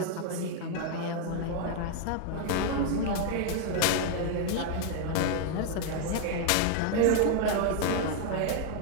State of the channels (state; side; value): different; both; correlation 0.00